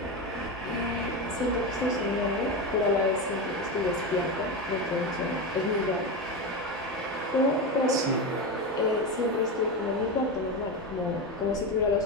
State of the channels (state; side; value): normal; both; correlation 0.18